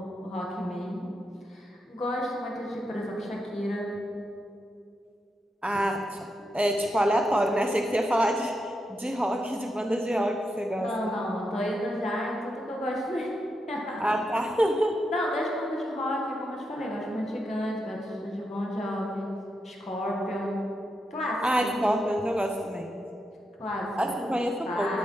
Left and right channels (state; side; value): normal; both; correlation 0.84